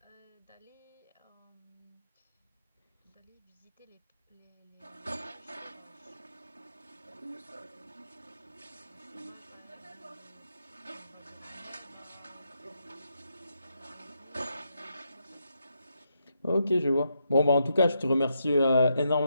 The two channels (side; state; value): both; inverted; correlation -0.81